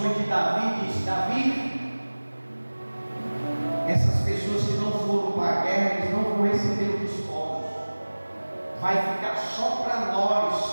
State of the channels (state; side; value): inverted; both; correlation -1.00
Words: de Davi dizem: Davi, essas pessoas que não foram para a guerra, eles não vão receber os despojos, vai ficar só para